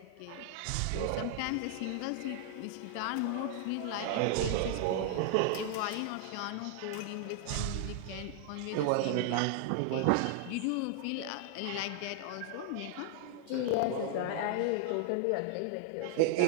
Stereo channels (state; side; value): different; both; correlation 0.00